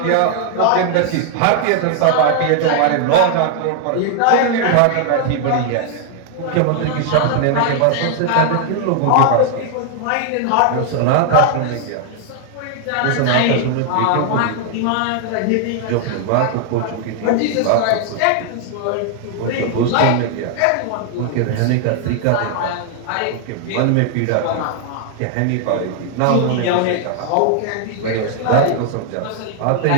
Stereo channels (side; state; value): both; different; correlation 0.00